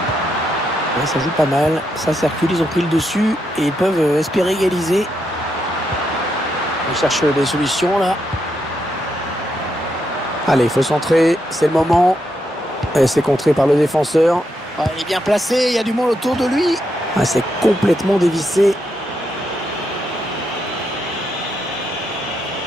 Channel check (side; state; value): both; normal; correlation 0.81